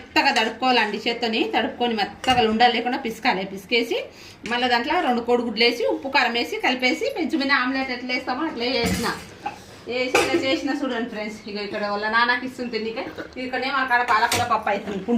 తడుపుకోవాలండి. చేత్తోని తడుపుకొని మెత్తగా ఉండలు లేకుండా పిసకాలి. పిసికేసి మళ్ళీ దాంట్లో 2 కోడిగుడ్లు వేసి ఉప్పు కారం వేసి కలిపేసి పెంచు మీద ఆమ్లెట్ ఎట్లా వేస్తామో అట్లా వేసిన. వేసి ఇలా చేసిన చూడండి ఫ్రెండ్స్. ఇక ఇక్కడ వాళ్ళ నాన్నకి ఇస్తుంది తిండికే. ఇక్కడనేమో అక్కడ పాలకూర పప్పు అవుతుంది,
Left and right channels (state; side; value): identical; both; correlation 1.00